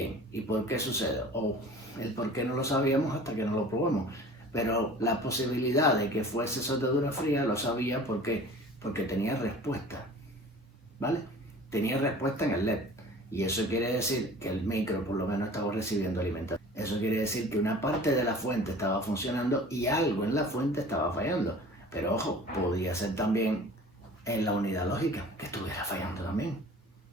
¿y por qué sucede? O el por qué no lo sabíamos hasta que no lo probamos. Pero la posibilidad de que fuese soldadura fría lo sabía porque tenía respuesta, ¿vale? Tenía respuesta en el LED. Y eso quiere decir que el micro por lo menos estaba recibiendo alimentación. Eso quiere decir que una parte de la fuente estaba funcionando y algo en la fuente estaba fallando. Pero ojo, podía ser también en la unidad lógica que estuviera fallando también,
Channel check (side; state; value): both; normal; correlation 0.44